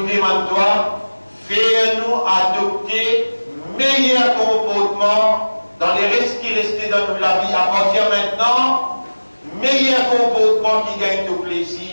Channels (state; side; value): inverted; both; correlation -1.00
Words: demande toi, fais-nous adopter meilleur comportement dans les restes qui restaient dans la vie à partir maintenant, meilleur comportement qui gagne de